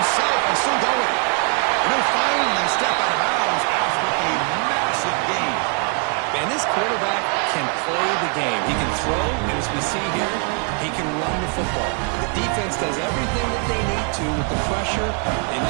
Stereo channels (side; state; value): left; quieter; 39.6 dB